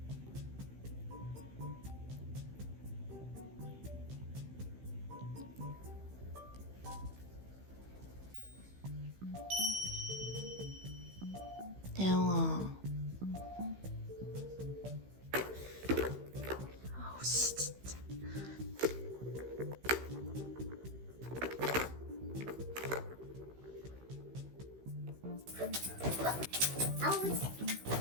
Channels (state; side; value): late; left; 15 ms